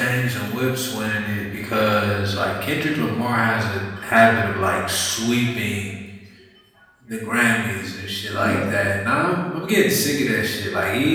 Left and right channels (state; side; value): identical; both; correlation 1.00